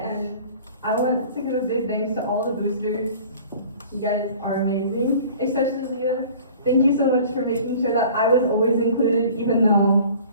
and I want to give a big thanks to all the boosters. You guys are amazing, especially Leah. Thank you so much for making sure that I was always included, even though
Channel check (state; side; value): inverted; both; correlation -0.46